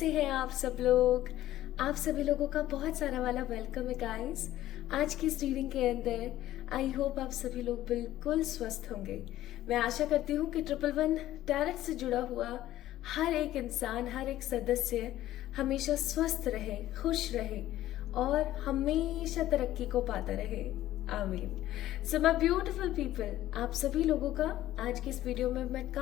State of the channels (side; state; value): right; quieter; 14.1 dB